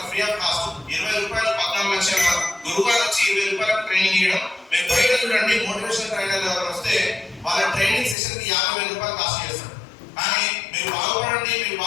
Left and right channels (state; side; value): drops out; right; at 8.2 s